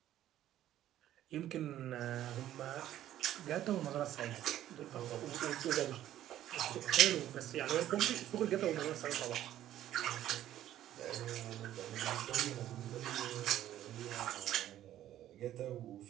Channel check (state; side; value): quieter; left; 12.5 dB